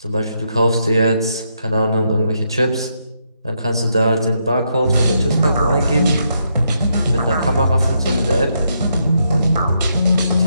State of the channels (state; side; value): inverted; both; correlation -0.79